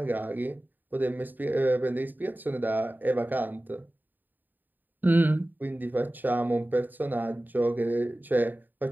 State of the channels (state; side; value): late; left; 0.089 ms